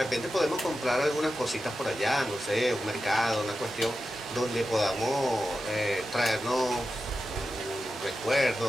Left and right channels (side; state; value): both; normal; correlation 0.91